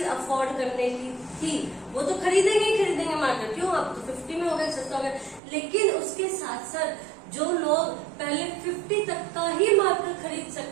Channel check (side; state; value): left; drops out; at 5.4 s